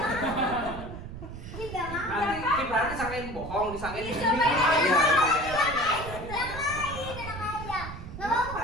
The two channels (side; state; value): right; noise; rumble, 10 dB below the sound